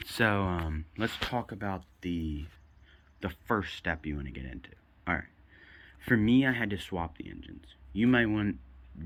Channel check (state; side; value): identical; both; correlation 1.00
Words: so let's talk about the first step you want to get into. Alright, for me, I had to swap the engines. You might